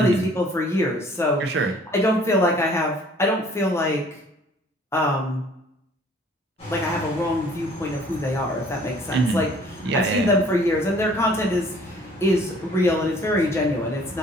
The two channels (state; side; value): normal; both; correlation 0.55